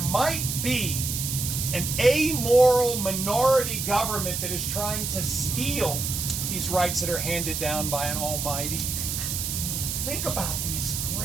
be an amoral minority government that is trying to steal these rights that are handed down by an Almighty. Think about these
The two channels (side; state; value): right; noise; hiss, 3 dB below the sound